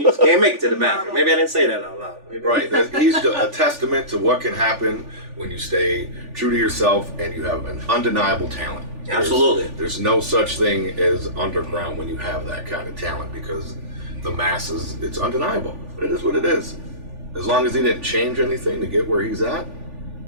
you just can't make it to the bathroom. Maybe I didn't say that out loud. Right. He's a testament to what can happen when you stay true to yourself and you have an undeniable talent. Absolutely. There's no such thing as underground when you have that kind of talent, because the masses, it's undeniable. It is what it is. As long as he didn't change anything to get where he's at,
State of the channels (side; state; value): left; late; 3.4 ms